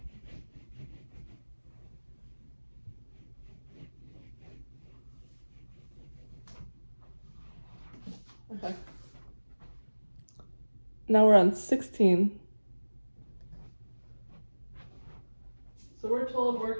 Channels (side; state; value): both; inverted; correlation -1.00